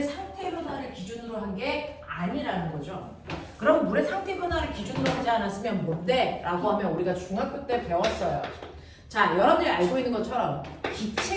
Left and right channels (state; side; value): identical; both; correlation 1.00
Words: 상태 변화를 기준으로 한 게 아니라는 거죠. 그럼 물의 상태 변화를 기준으로 하지 않았으면 뭔데? 라고 하면 우리가 중학교 때 배웠어요. 자, 여러분들이 알고 있는 것처럼